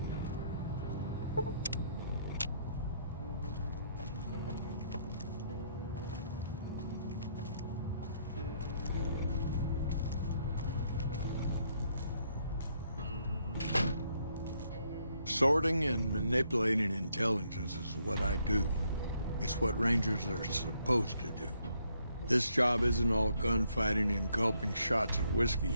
Sorting and manipulating intelligence is what I do. It's what Rangers are supposed to do. This job isn't all gunfighting and gulping shots of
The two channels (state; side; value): inverted; both; correlation -0.72